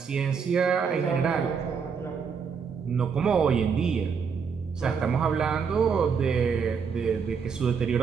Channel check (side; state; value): left; quieter; 6.1 dB